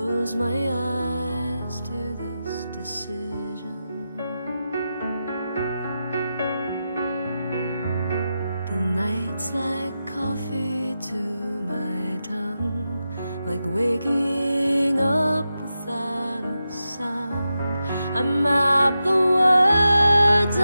my eyes to this decision. The night's like coffee to my tongue, like waking up without a sound. I map the words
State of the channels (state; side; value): inverted; both; correlation -0.90